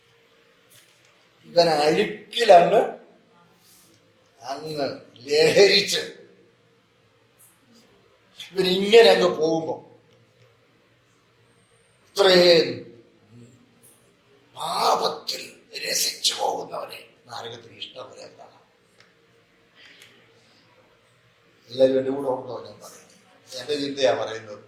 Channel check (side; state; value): both; identical; correlation 1.00